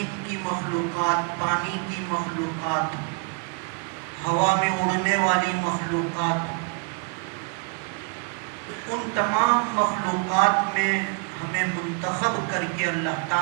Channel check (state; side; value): quieter; left; 36.6 dB